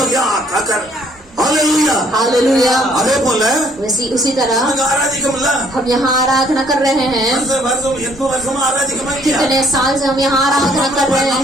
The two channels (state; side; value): normal; both; correlation 0.63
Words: यहाँ आकर हालेलुया हालेलुया। அதே போல उसी तरह நமக்கு ஆராதிக்கமில்ல. हम यहाँ आराधना कर रहे हैं। வருஷம் 8 வருஷமா ஆராதிக்கமா இல்லையா? कितने साल से हम यहाँ आराधना कर रहे